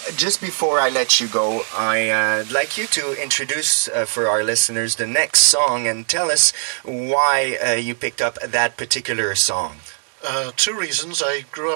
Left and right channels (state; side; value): silent; left; digital silence